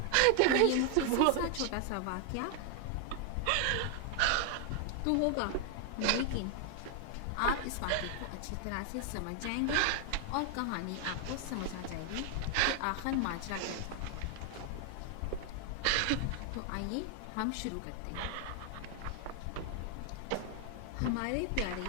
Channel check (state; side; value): different; both; correlation 0.00